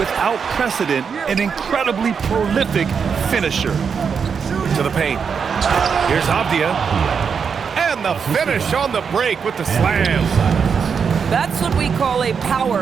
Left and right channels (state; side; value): quieter; left; 6.3 dB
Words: precedent, an incredibly prolific finisher. To the paint. Here's Avdia. And the finish on the break with the slam. That's what we call a